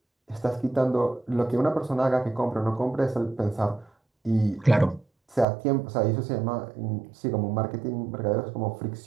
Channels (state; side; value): drops out; left; at 5.5 s